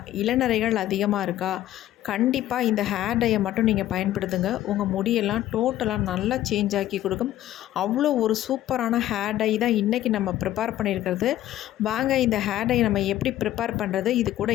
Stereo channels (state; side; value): quieter; right; 13.4 dB